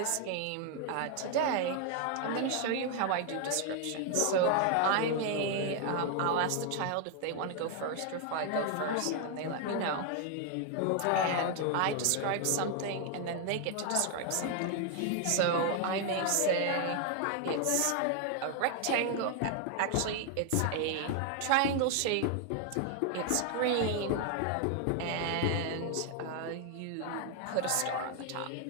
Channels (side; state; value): both; different; correlation 0.00